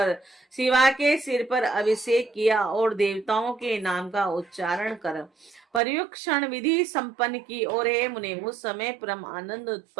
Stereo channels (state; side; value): drops out; left; at 5.8 s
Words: शिवा के सिर पर अभिषेक किया और देवताओं के नाम का उच्चारण कर पर्युक्षण विधि संपन्न की। और हे मुने, उस समय परम आनंद